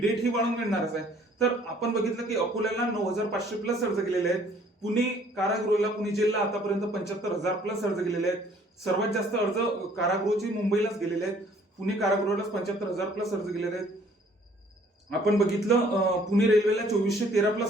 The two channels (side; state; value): both; normal; correlation 0.59